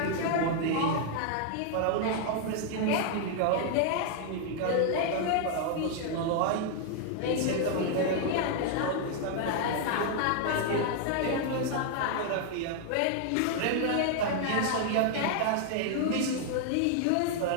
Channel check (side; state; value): both; different; correlation 0.00